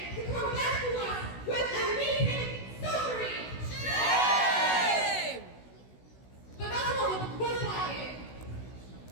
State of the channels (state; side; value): late; right; 16 ms